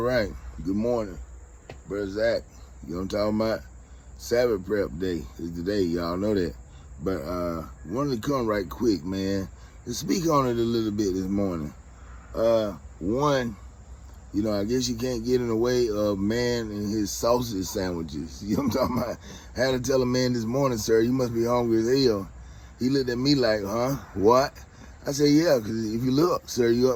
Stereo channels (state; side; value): identical; both; correlation 1.00